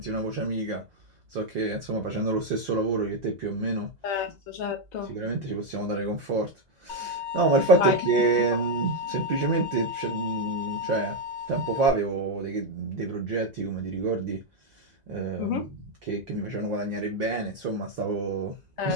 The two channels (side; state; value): left; late; 2.0 ms